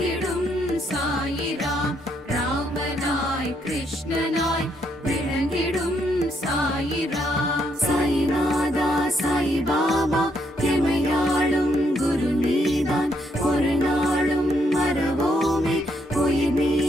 சாயிராம். ராமனாய் கிருஷ்ணனாய் விளங்கிடும் சாயிராம். சாயிநாதா சாய் பாபா எமையாளும் குரு நீதான். ஒரு நாளும் மறவோமே உயிர்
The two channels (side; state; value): both; normal; correlation 0.75